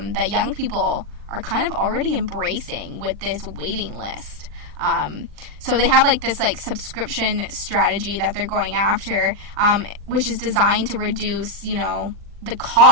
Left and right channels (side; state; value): left; late; 40 ms